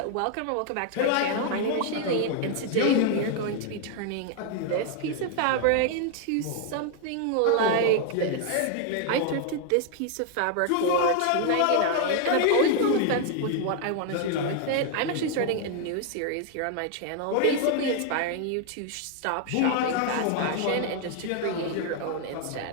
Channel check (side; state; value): both; different; correlation 0.00